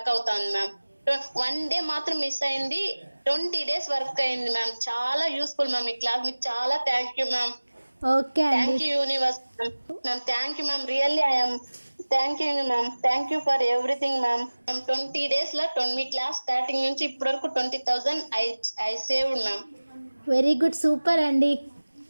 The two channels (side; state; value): both; inverted; correlation -1.00